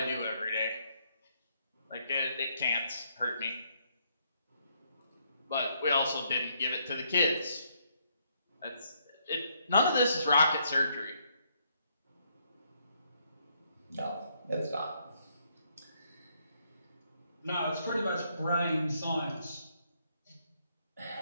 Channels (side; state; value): both; inverted; correlation -0.73